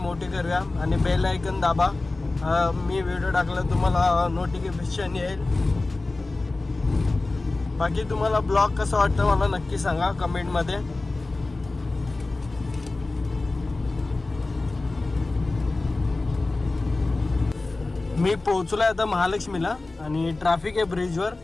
करूया आणि बेल आयकन दाबा. मी व्हिडिओ टाकला तुम्हाला नोटिफिकेशन येईल. बाकी तुम्हाला ब्लॉग कसा वाटतं मला नक्की सांगा कमेंटमध्ये. मी पोहोचलो आहे आता महालक्ष्मीला आणि ट्रॅफिक आहे ब्रिजवर.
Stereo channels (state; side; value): quieter; right; 3.2 dB